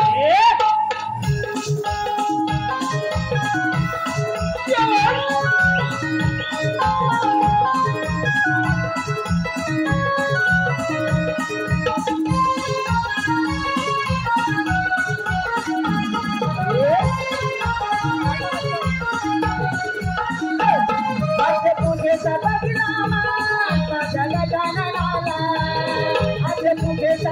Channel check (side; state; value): both; identical; correlation 1.00